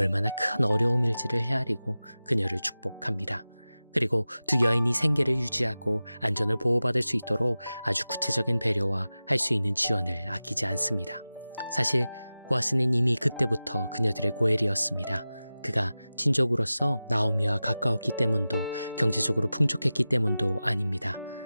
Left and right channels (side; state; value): both; inverted; correlation -0.96